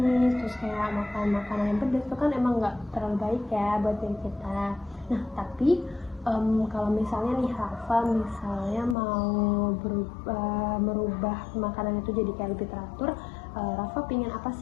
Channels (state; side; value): drops out; right; at 9.0 s